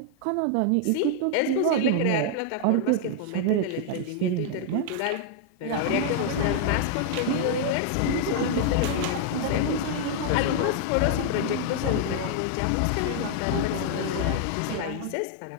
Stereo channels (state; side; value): different; both; correlation 0.00